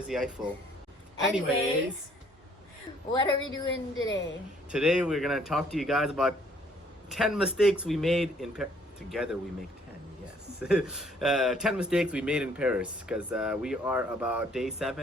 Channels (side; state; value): both; normal; correlation 0.62